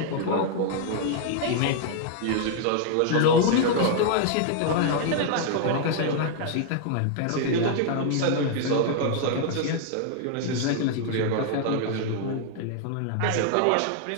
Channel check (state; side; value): different; both; correlation 0.00